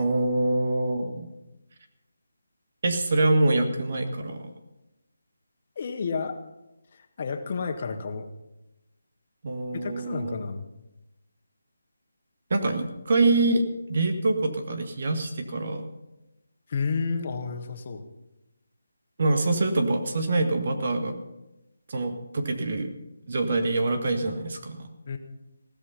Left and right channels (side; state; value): both; inverted; correlation -0.83